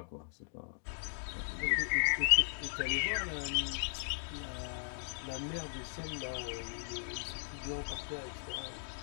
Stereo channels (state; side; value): silent; right; digital silence